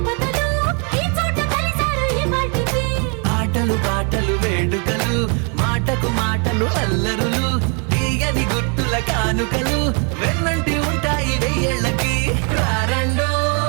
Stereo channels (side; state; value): left; quieter; 37.3 dB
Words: ఈ చోట కలిసారు ఈ వాటికి ఆటలు పాటలు వేడుకలు మాటకు మాటలు అల్లరులు తీయని గుర్తుల కానుకలు వెన్నంటి ఉంటాయి వెయ్యేళ్ళకి రారండో